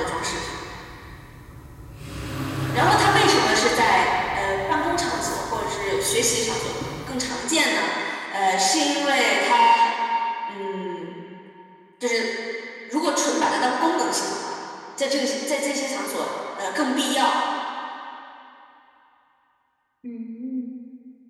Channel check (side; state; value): both; identical; correlation 1.00